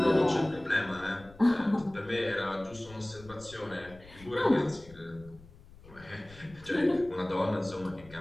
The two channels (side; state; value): left; noise; rumble, 21 dB below the sound